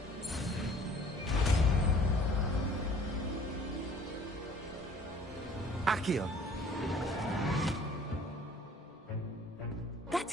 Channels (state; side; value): normal; both; correlation 0.53